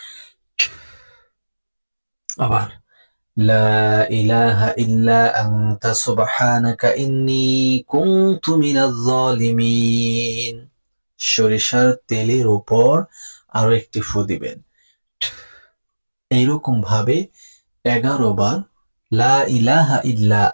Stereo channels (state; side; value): inverted; both; correlation -1.00